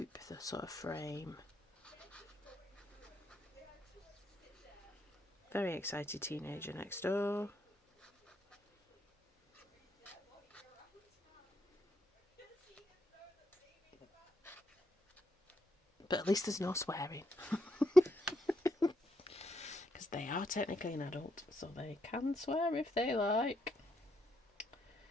the sort of frame. Very excited teenager next door. But at least there's no swearing. Because they are technically an adult, so they can swear if they like.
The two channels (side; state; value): both; normal; correlation 0.78